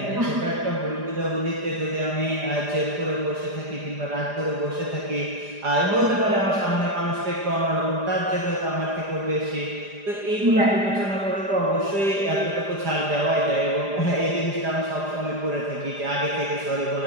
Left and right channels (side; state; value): left; late; 4.9 ms